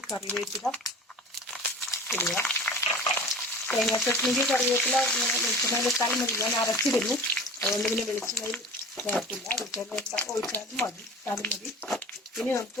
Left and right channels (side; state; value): both; normal; correlation 0.39